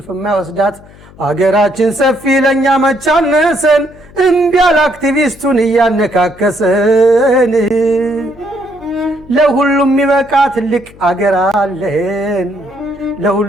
የማይወስዳት። አገራችን ሰፊ ለእኛ መቻነሰን፣ እምቢ ያለ አክቲቪስቱን እያነካከሰን። ለሁሉም የሚበቃ ትልቅ አገር አለን፣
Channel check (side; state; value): left; noise; hum, 23 dB below the sound